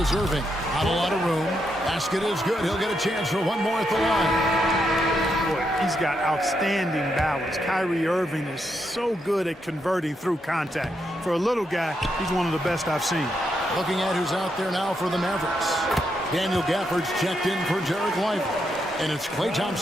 Irving. Not a lot of room. Basket is good. He'll get a chance for one more at the line. Boy, he's got outstanding balance. Kyrie Irving is so good at converting through contact. For a little guy, he's one of the best I've seen. Looking at who's out there now for the Mavericks. Daniel Gafford's checked in for Derek Lively. And it's Klay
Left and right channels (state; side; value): normal; both; correlation 0.81